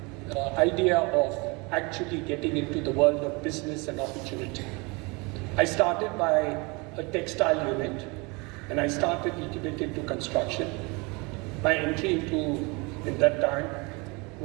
idea of actually getting into the world of business and opportunity. I started by a textile unit, and I started a little bit into construction. My entry into, in that time,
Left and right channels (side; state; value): left; quieter; 27.9 dB